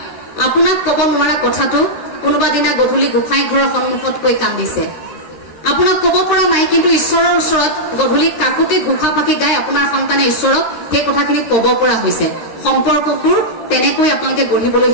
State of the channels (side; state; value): right; late; 13 ms